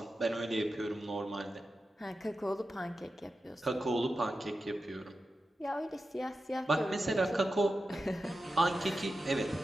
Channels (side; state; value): both; normal; correlation 0.91